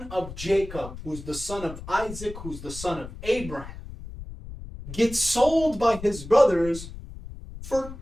of Jacob, who's the son of Isaac, who's the son of Abraham, gets sold by his brothers for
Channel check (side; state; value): left; noise; rumble, 12 dB below the sound